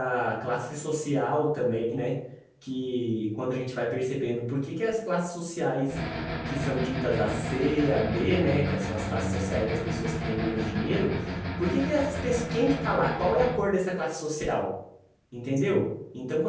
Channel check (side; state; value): both; identical; correlation 1.00